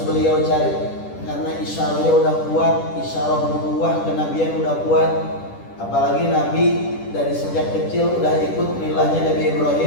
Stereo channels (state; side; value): late; right; 10 ms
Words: beliau cari, karena isyarahnya udah kuat, isyarah nubuwah kenabian udah kuat. Apalagi Nabi dari sejak kecil udah ikut milahnya Nabi